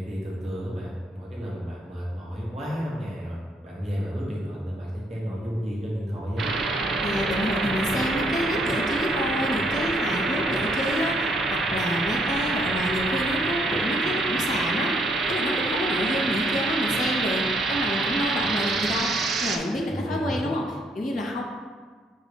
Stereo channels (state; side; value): normal; both; correlation 0.69